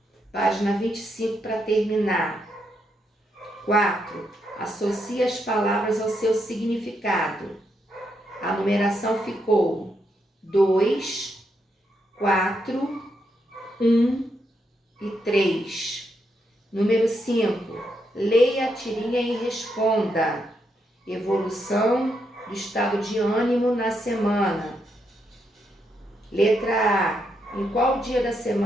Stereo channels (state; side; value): normal; both; correlation 0.80